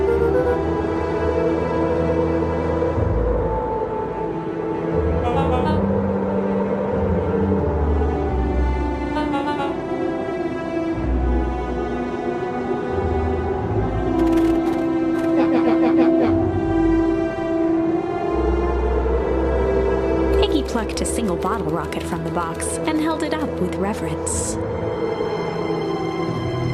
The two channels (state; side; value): identical; both; correlation 1.00